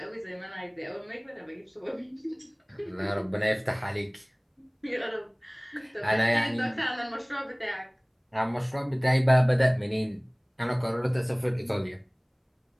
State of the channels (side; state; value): both; identical; correlation 1.00